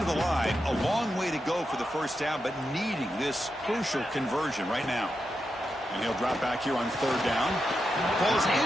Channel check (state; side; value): normal; both; correlation 0.87